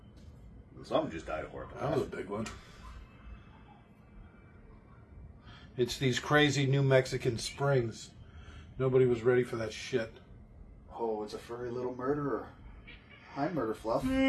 Something just died of horrible. That was a big one. It's these crazy New Mexican springs. Nobody was ready for that shit. Oh, it's a furry little murderer. Hi, Murder Fluff.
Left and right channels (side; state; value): both; identical; correlation 1.00